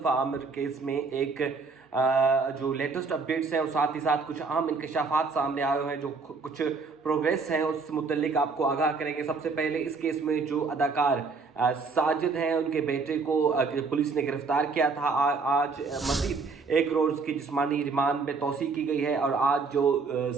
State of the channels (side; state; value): left; quieter; 4.4 dB